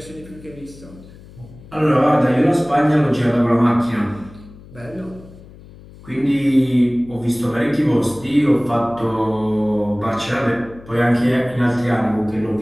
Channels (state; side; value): noise; left; hum, 20 dB below the sound